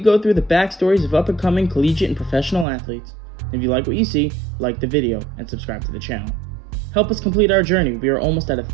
go through the backstories of up-and-coming collegiate and professional athletes. If you like what you see, like the video and subscribe to the channel. Help us complete our journey. We are almost at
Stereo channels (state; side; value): drops out; left; at 2.7 s